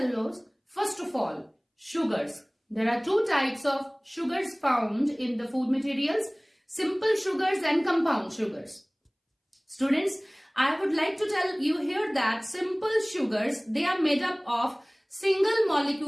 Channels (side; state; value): both; identical; correlation 1.00